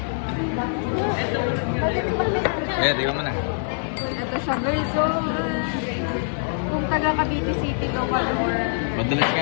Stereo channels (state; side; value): silent; right; digital silence